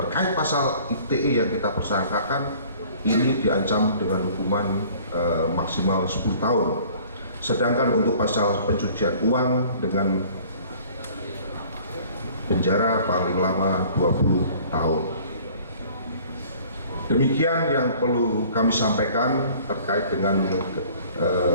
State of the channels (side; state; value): both; inverted; correlation -0.51